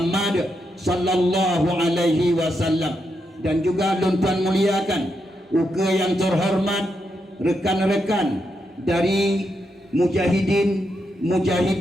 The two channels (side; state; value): both; normal; correlation 0.83